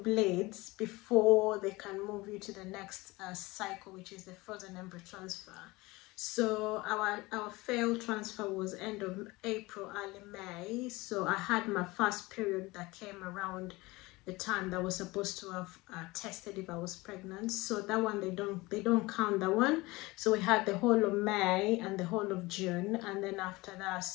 bleeds before they can move you to the next cycle, which is the frozen embryo transfer. So our failed transfer was end of April, early May. So I had my first period that came around the time that was supposed to have tested if I was pregnant. So that one, they don't count that one. So we had the whole of May and the whole of June, and then after that,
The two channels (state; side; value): quieter; right; 21.9 dB